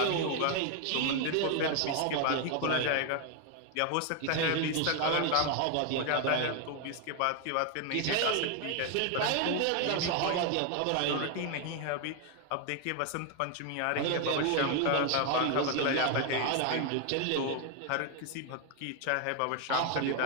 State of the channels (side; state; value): both; different; correlation 0.01